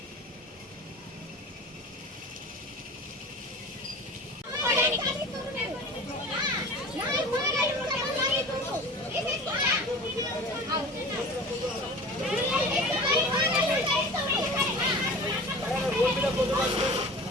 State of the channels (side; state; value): both; normal; correlation 0.37